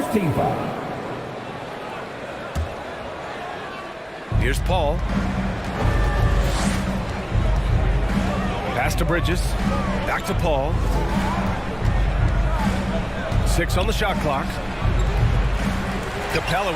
team foul. Here's Paul. Pass to Bridges. Back to Paul. 6 on the shot clock. Capella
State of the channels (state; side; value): identical; both; correlation 1.00